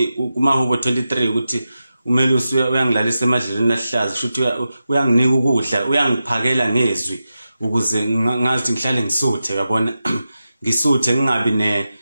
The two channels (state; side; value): inverted; both; correlation -0.91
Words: 23 ukuthi uMelusi uyangilalisa emadlelweni ahlaza futhi uyanginika ukudla uyangiphakela ngezwi ukuze ngazi ngihlale ngisuthe yabona ngisuthe ngingabi